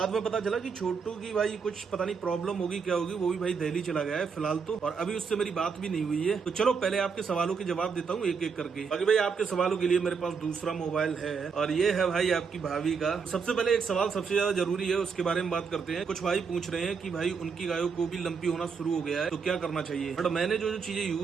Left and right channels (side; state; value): left; quieter; 5.7 dB